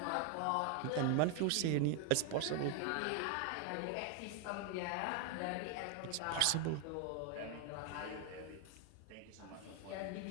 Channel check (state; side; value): different; both; correlation 0.01